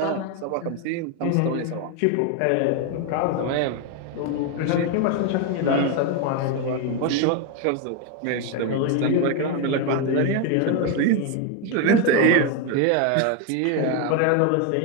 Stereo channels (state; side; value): different; both; correlation 0.01